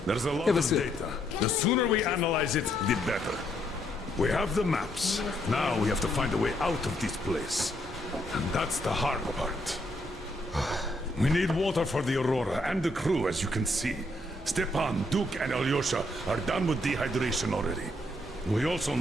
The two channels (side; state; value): both; normal; correlation 0.73